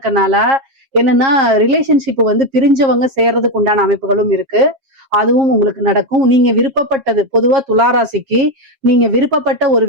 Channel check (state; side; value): late; left; 7.4 ms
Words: என்னன்னா ரிலேஷன்ஷிப் வந்து பிரிஞ்சவங்க சேர்றதுக்கு உண்டான அமைப்புகளும் இருக்கு. அதுவும் உங்களுக்கு நடக்கும். நீங்க விருப்பப்பட்டது பொதுவா துளாராசிக்கு நீங்க விருப்பப்பட்ட ஒரு